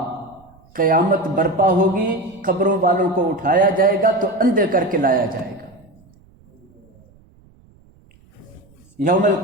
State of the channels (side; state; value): right; noise; rumble, 29 dB below the sound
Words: قیامت برپا ہوگی، قبروں والوں کو اٹھایا جائے گا تو اندھے کر کے لایا جائے گا۔ یوم